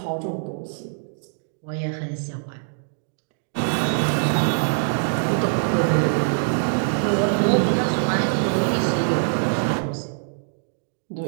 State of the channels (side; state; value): left; silent; digital silence